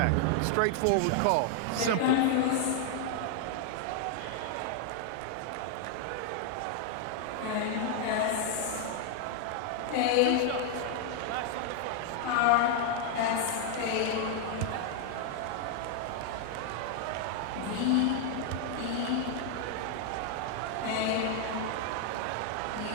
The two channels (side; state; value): both; different; correlation 0.00